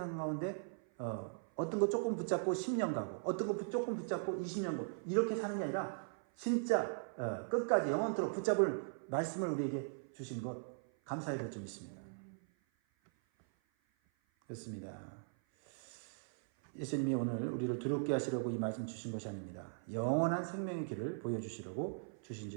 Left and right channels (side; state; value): left; silent; 52 dB below the other